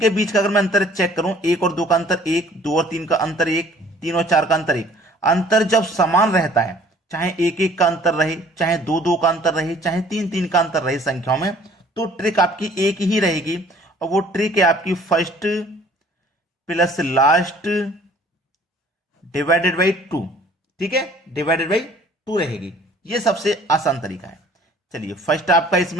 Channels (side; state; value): both; normal; correlation 0.54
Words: बीच का अगर मैं अंतर चेक करूं, 1 और 2 का अंतर 1, 2 और 3 का अंतर 1, 3 और 4 का अंतर 1। अंतर जब समान रहता है, चाहे 1 1 का अंतर रहे, चाहे 2 2 का अंतर रहे, चाहे 3 3 का अंतर रहे संख्याओं में, तो ट्रिक आपकी एक ही रहेगी। और वो ट्रिक है आपकी first plus last divided by 2, ठीक है, डिवाइडेड बाई 2 रहेगी। ये सबसे आसान तरीका है। चलिए, फर्स्ट आपका